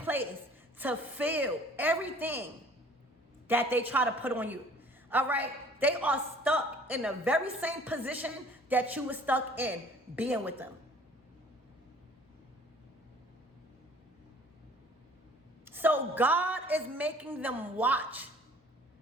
to feel everything that they try to put on you, all right? They are stuck in the very same position that you were stuck in being with them. So God is making them watch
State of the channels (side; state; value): both; normal; correlation 0.52